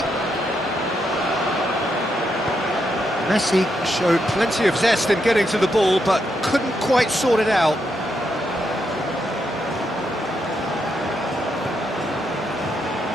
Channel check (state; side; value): normal; both; correlation 0.80